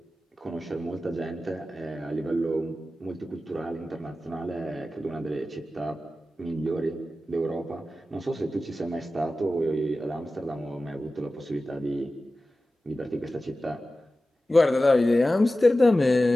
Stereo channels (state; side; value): normal; both; correlation 0.94